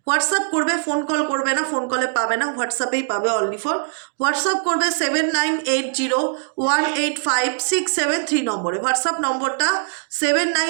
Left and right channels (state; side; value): silent; left; digital silence